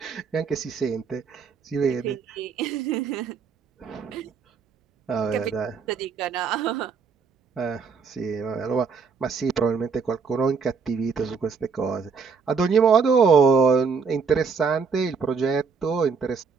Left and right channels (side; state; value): left; quieter; 5.5 dB